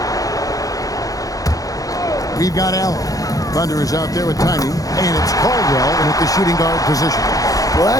We've got Allen. Thunder is out there with Tiny, and it's Caldwell in at the shooting guard position. Well,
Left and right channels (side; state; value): right; late; 0.17 ms